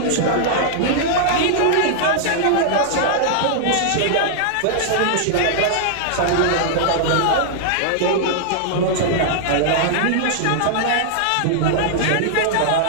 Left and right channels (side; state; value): both; different; correlation -0.01